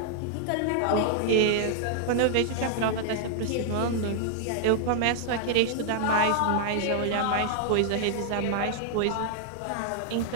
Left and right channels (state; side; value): different; both; correlation -0.01